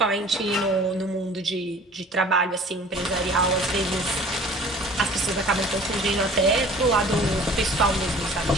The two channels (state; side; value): normal; both; correlation 0.48